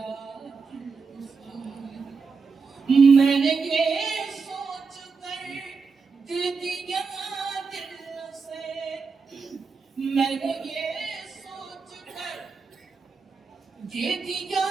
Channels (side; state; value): left; quieter; 4.9 dB